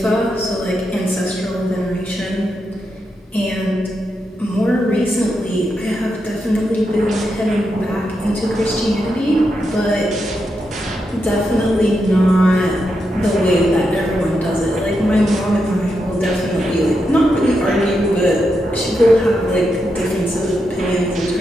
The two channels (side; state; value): both; normal; correlation 0.84